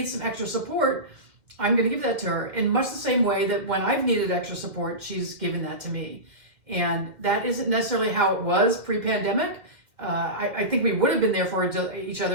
some extra support, I'm going to give that to her in much the same way that when I've needed extra support, she's given that to me. And that isn't necessarily how it was pre-pandemic. I think we would have been there for each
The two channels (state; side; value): late; left; 2.1 ms